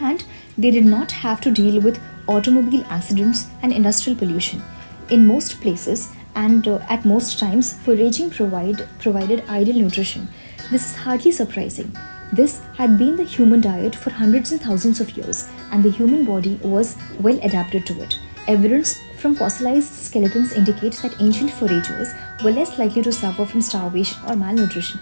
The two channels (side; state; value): both; inverted; correlation -1.00